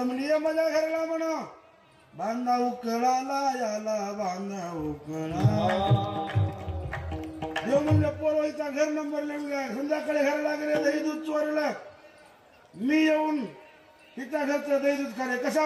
म्हणजे ये माझ्या घराला म्हणा, बांधा उकळाला याला बांधा उकळा. देव म्हणलं पोरवाईचा घर नंबर लिहून घ्या. संध्याकाळी घराला गेले, दही दूध चोरलं. मी येऊन तिच्या घरचं दही दूध खाले. कसा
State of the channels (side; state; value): both; identical; correlation 1.00